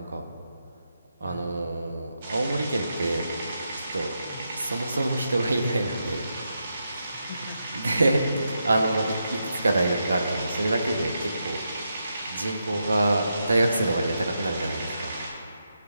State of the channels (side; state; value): both; inverted; correlation -0.84